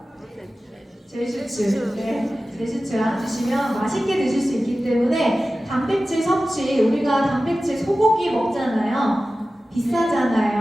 제슈츠. 네, 제슈츠랑 드시면 맛있게 드실 수 있기 때문에 단백질 섭취, 우리가 단백질 소고기 먹잖아요.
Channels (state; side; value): normal; both; correlation 0.95